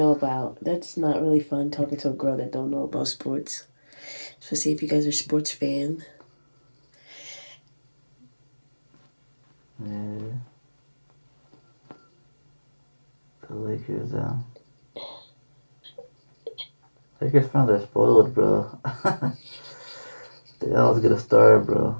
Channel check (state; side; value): inverted; both; correlation -1.00